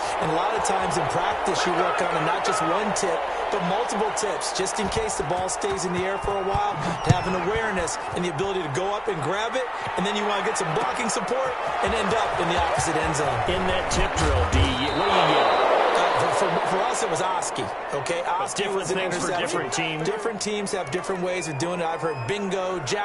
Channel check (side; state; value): both; identical; correlation 1.00